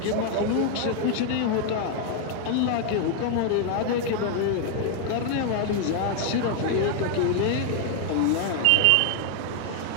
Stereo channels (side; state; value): both; different; correlation 0.00